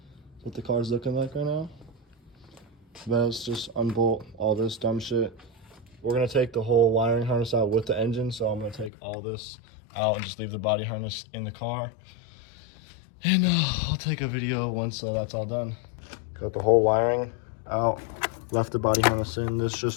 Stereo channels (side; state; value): right; drops out; at 8.9 s